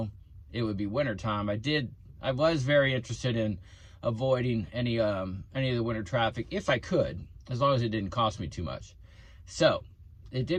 it would be winter time. I was very interested in avoiding any of the winter traffic if I could, as long as it didn't cost me too much. So it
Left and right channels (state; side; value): identical; both; correlation 1.00